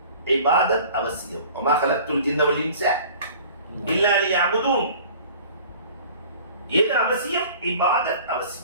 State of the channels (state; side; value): inverted; both; correlation -0.46